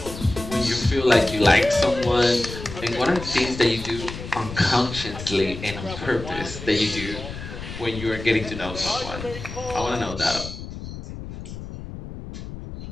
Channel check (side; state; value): left; noise; rumble, 10 dB below the sound